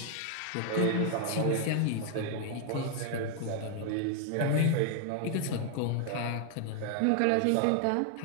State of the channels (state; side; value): different; both; correlation 0.00